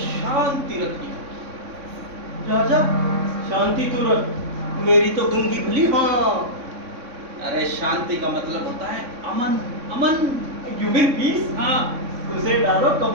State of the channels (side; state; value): left; late; 3.6 ms